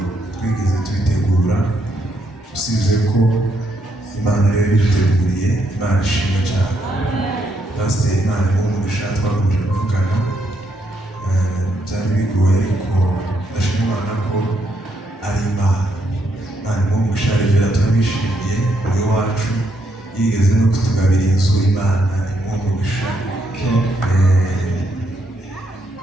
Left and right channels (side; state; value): both; normal; correlation 0.76